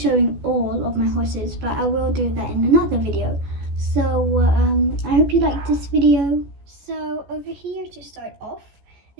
all of my horses, but I will do that in another video. So I hope you like this video. So over here to start off,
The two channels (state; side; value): late; left; 14 ms